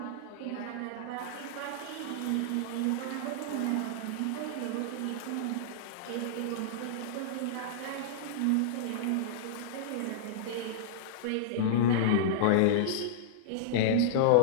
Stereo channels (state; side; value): different; both; correlation -0.02